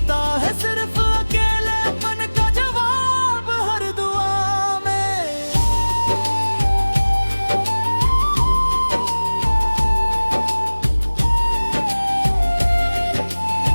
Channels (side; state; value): both; inverted; correlation -1.00